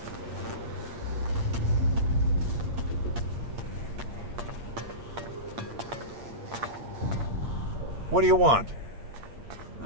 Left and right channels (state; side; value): late; left; 8.6 ms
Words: What do you want?